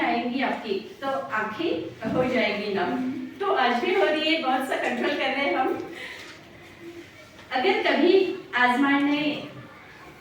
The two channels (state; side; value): identical; both; correlation 1.00